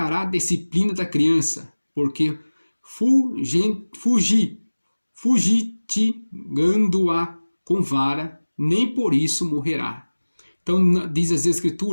a disciplina da criança, porque fugitigando-a com vara, nem por isso morrerá. Então diz as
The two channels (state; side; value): inverted; both; correlation -1.00